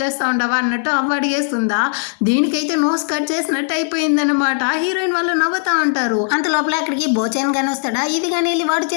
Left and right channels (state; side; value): silent; right; digital silence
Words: చేస్తూ ఉండవా అన్నట్టు అవ్వ అడిగేస్తుందా. దీనికైతే నోస్ కట్ చేసినట్టు అయిపోయిందనమాట. హీరోయిన్ వాళ్ళు నవ్వుతా ఉంటారు. అంత లోపల అక్కడికి బోచాన్ కానీ వస్తాడా, ఇది కానీ వెళ్ళి వాడి